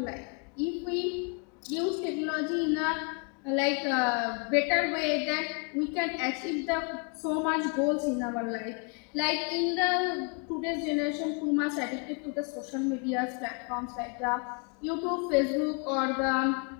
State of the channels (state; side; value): quieter; right; 36.5 dB